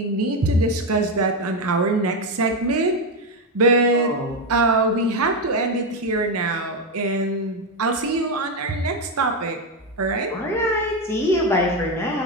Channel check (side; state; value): both; normal; correlation 0.09